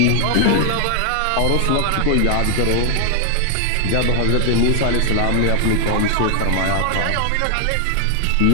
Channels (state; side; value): different; both; correlation 0.00